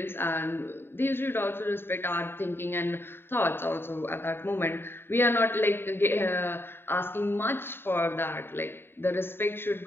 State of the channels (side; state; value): right; late; 0.11 ms